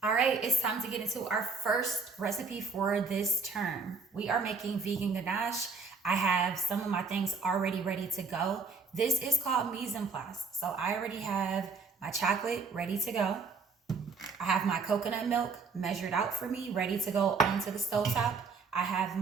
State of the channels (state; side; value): quieter; left; 4.7 dB